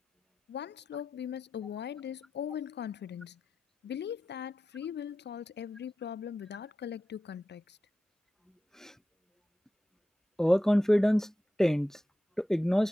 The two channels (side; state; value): both; normal; correlation 0.92